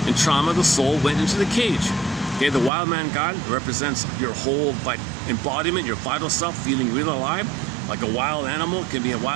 In trauma, the soul went into the cage. Okay, the wild man God represents your whole embodiment, your vital self, feeling real alive, like a wild animal. It could be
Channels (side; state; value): left; drops out; at 2.7 s